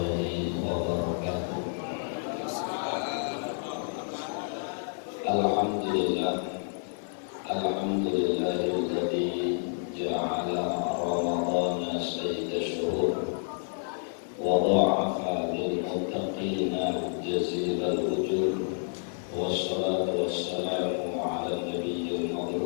wabarakatuh. Alhamdulillah, alhamdulillahilladzi ja'ala ramadhana sayyida syuhur wa dha'afa lil muttaqina jazilal ujur, wassalatu wassalamu ala nabiyyil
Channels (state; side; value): silent; right; digital silence